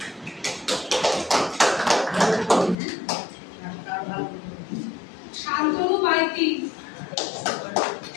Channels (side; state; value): right; drops out; at 2.8 s